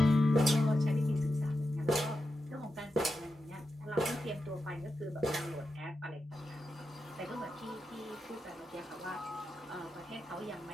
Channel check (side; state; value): both; normal; correlation 0.88